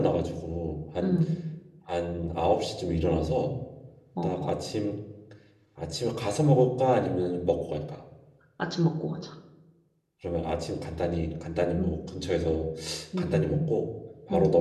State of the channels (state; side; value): identical; both; correlation 1.00